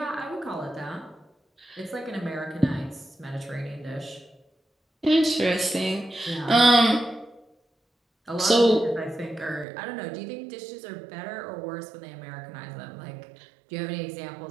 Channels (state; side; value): drops out; left; at 9.7 s